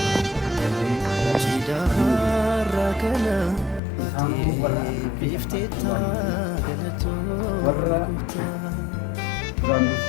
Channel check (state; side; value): drops out; right; at 3.8 s